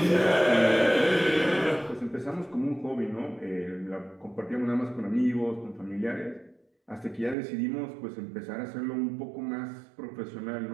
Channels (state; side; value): drops out; left; at 7.4 s